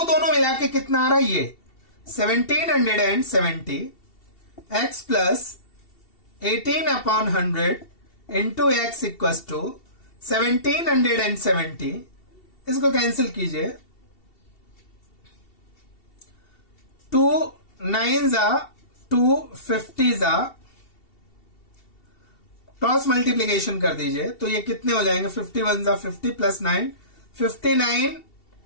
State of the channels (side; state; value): right; late; 2.7 ms